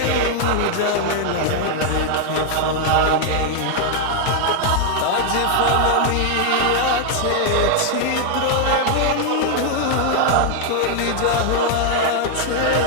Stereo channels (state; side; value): different; both; correlation 0.00